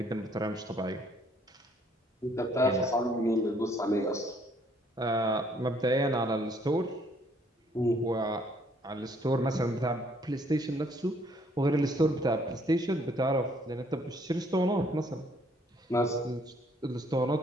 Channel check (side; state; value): both; normal; correlation 0.65